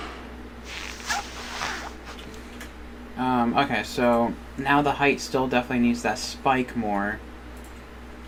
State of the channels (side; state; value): both; identical; correlation 1.00